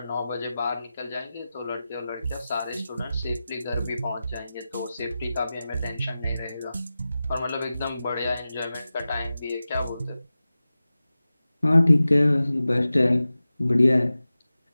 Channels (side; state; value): both; inverted; correlation -0.95